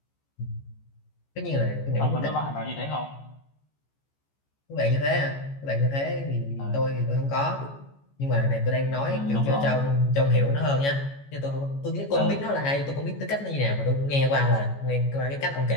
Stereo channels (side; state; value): right; late; 14 ms